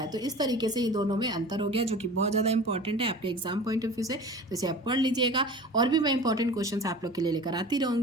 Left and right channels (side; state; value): both; normal; correlation 0.38